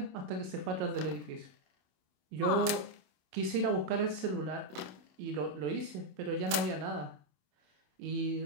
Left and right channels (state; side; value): late; left; 27 ms